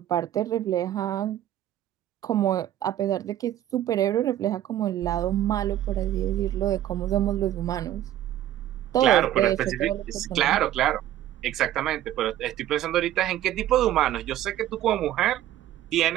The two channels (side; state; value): left; quieter; 12.6 dB